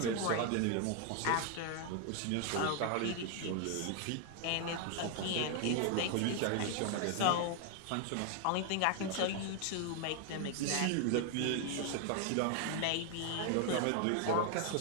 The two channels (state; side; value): different; both; correlation 0.00